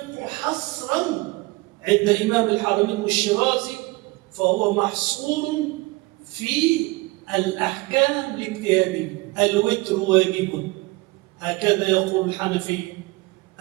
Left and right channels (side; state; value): left; quieter; 22.4 dB